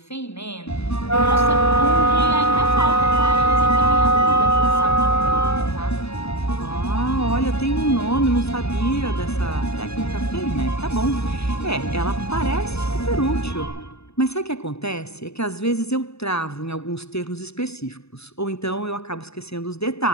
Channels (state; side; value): late; right; 0.79 ms